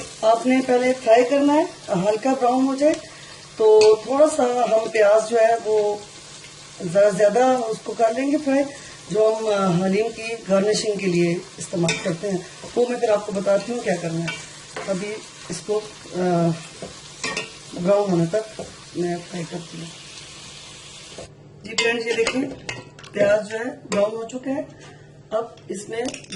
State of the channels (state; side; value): identical; both; correlation 1.00